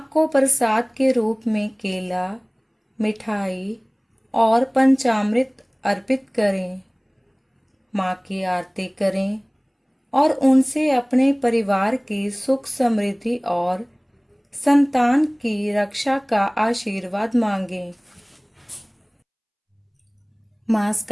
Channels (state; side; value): identical; both; correlation 1.00